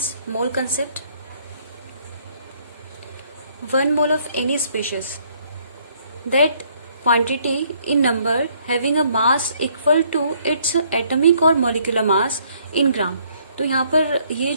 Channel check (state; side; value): inverted; both; correlation -0.65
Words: mole concept. 1 mole of any species, that quantity in number having a mass equal to its atomic or molecular mass in ग्राम. तो यहाँ पर ये